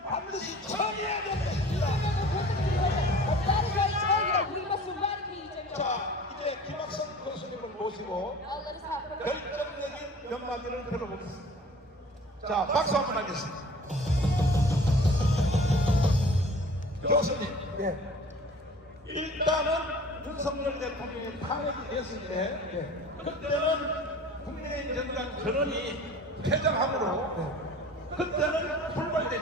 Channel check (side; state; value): both; normal; correlation 0.45